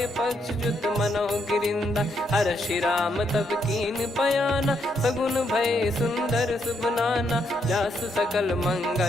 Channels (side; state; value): both; normal; correlation 0.76